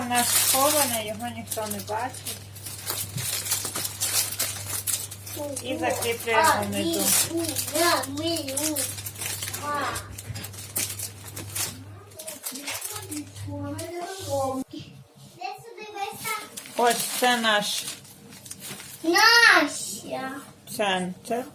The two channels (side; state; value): both; identical; correlation 1.00